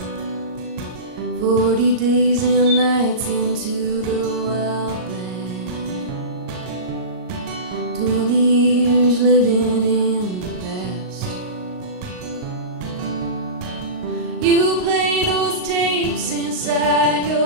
40 days and nights into the wild. 20 years living in the past. You play those tapes inside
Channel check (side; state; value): left; late; 38 ms